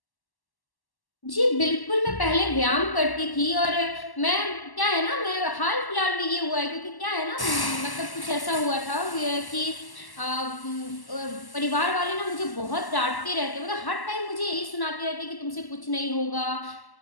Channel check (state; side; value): late; right; 1.1 ms